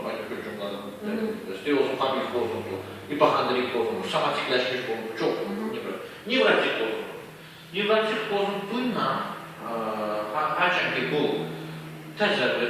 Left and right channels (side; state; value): both; identical; correlation 1.00